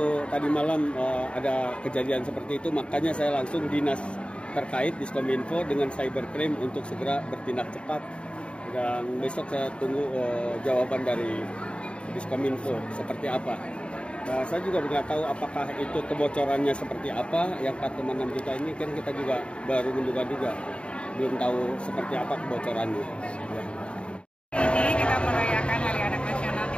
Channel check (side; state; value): right; late; 0.056 ms